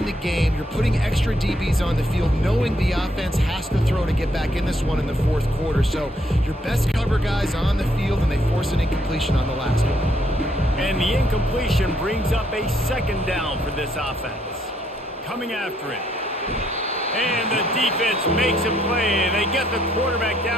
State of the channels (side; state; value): both; normal; correlation 0.71